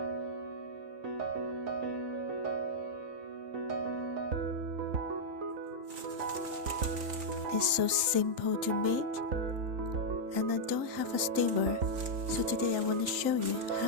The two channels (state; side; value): late; left; 3.8 ms